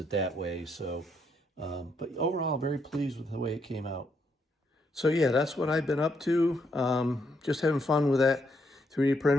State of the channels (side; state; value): both; normal; correlation 0.76